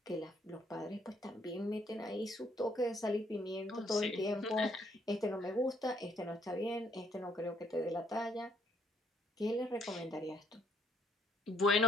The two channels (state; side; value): normal; both; correlation 0.68